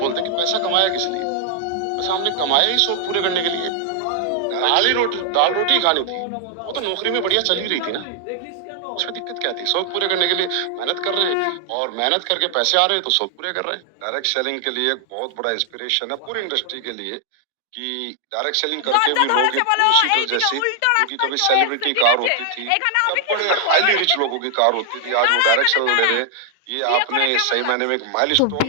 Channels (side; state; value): both; different; correlation 0.00